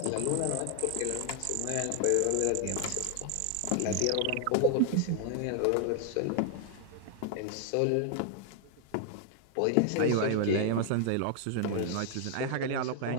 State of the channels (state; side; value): different; both; correlation 0.00